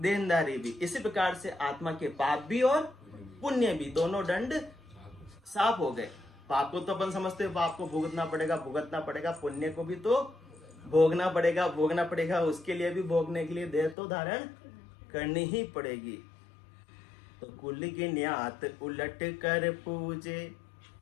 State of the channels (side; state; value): right; drops out; at 14.0 s